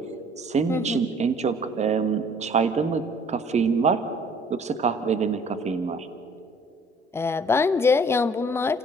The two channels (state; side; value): normal; both; correlation 0.56